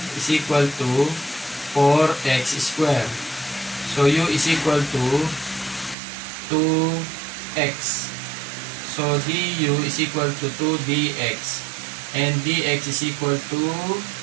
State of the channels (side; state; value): left; drops out; at 6.0 s